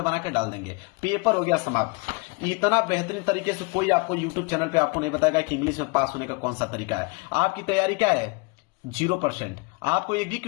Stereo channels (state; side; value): quieter; right; 29.5 dB